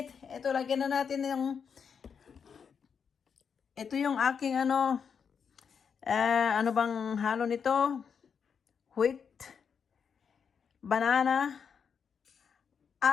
Ito, lagyan na natin ito yung aking ano bang halo nito? Wheat, banana,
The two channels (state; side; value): quieter; right; 6.6 dB